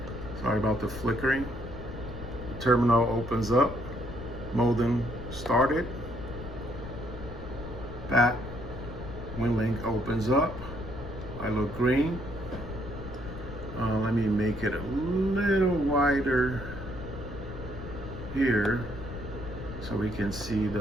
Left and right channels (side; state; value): left; noise; rumble, 10 dB below the sound